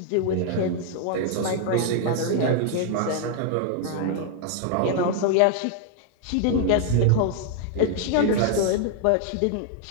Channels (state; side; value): different; both; correlation 0.00